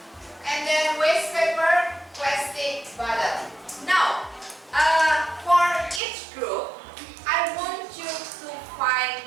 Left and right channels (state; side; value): drops out; left; at 6.0 s